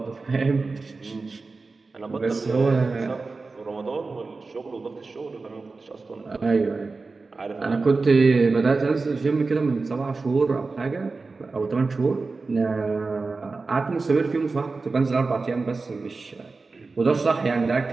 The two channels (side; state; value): left; quieter; 4.0 dB